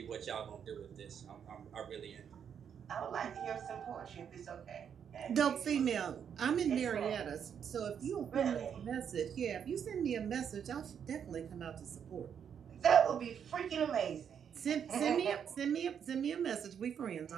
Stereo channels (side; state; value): left; quieter; 8.0 dB